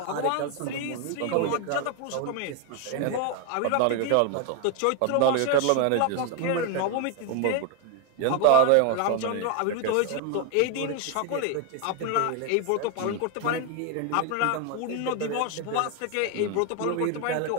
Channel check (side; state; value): both; different; correlation 0.01